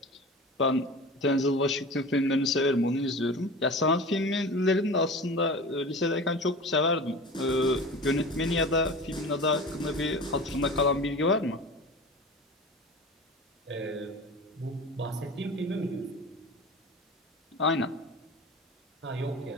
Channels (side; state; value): both; normal; correlation 0.34